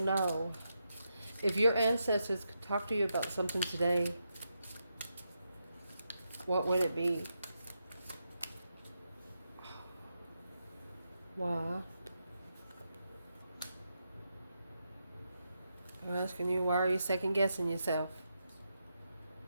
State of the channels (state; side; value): inverted; both; correlation -0.84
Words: If your ancestors could talk to you about something today, what would it be? Why? I'm asking you, why are you second guessing yourself?